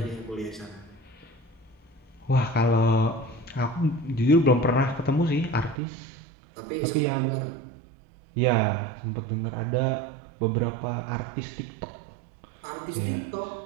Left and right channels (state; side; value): drops out; left; at 5.8 s